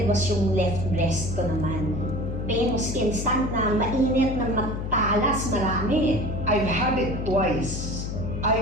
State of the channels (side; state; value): left; noise; hum, 4 dB below the sound